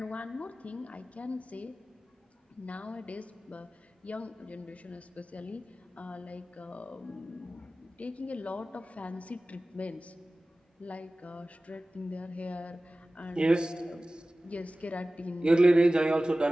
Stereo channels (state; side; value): normal; both; correlation 0.97